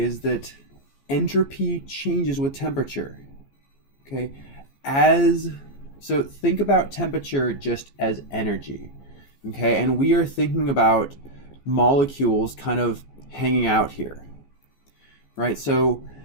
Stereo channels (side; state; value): right; late; 14 ms